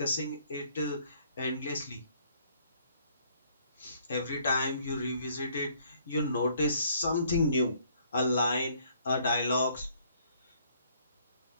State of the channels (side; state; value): both; inverted; correlation -0.63